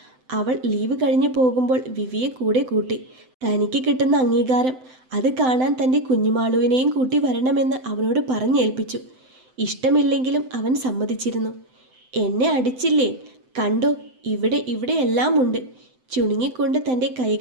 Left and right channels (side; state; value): left; late; 7.8 ms